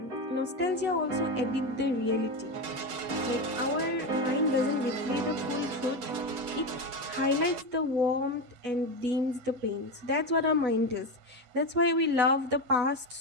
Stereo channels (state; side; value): late; left; 8.1 ms